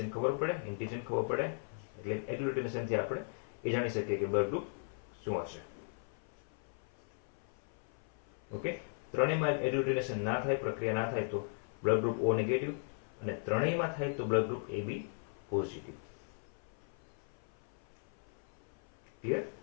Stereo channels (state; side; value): silent; right; 53 dB below the other